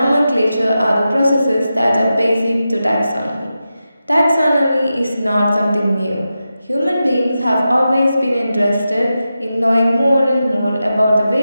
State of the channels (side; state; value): both; inverted; correlation -0.91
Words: are the processes that are basic to taxonomy. Taxonomy is not something new. Human beings have always been interested in knowing more and more about the